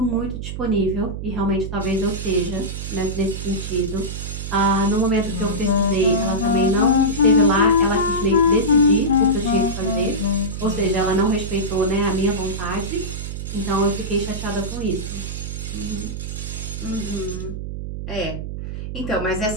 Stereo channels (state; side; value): noise; right; hum, 6 dB below the sound